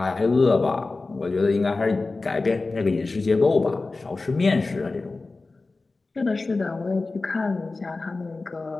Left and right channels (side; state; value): right; quieter; 3.6 dB